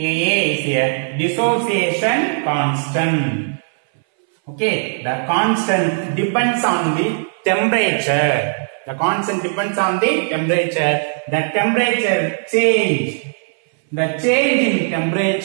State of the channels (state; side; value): silent; left; 62 dB below the other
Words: a dissociation constant. Okay, the constant depends on the temperature. The constant depends on the temperature. The temperature change. The change in